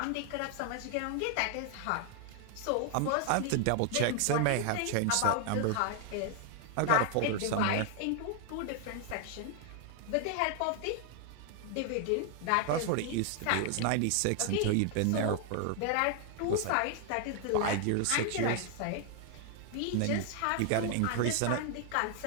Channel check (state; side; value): different; both; correlation 0.00